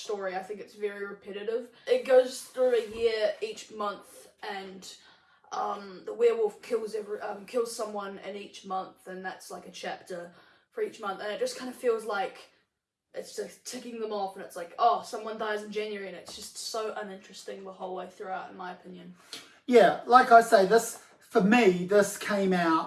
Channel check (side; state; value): both; identical; correlation 1.00